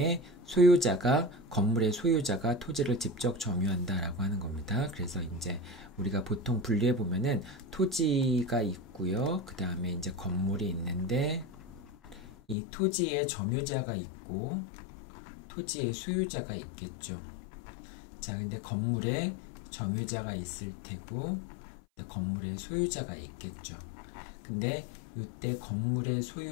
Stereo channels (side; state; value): right; drops out; at 12.6 s